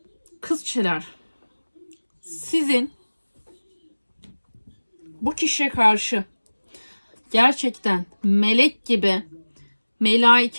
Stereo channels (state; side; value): inverted; both; correlation -1.00